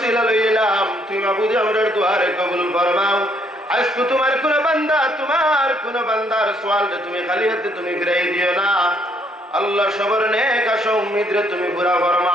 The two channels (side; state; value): both; normal; correlation 0.68